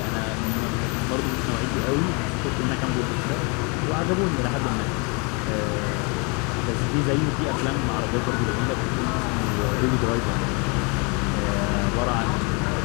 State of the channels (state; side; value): quieter; right; 32.4 dB